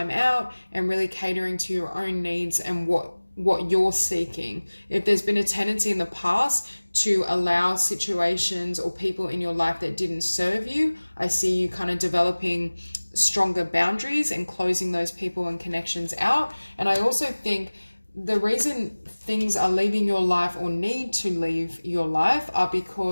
out and really catering to your own needs and what you're seeking. If there's been a tendency in the past to allow situations or people in your life that didn't serve you, I see you kind of developing stronger boundaries and closing those people and connections out. And I also think the reason things are leaving your life or need to leave your life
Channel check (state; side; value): inverted; both; correlation -1.00